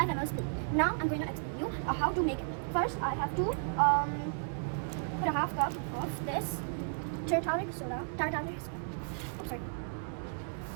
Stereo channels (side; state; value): left; silent; digital silence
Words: ml spoon. Now I'm going to explain you how to make it. First I have to put a half cup of this tartaric soda. Oh, sorry.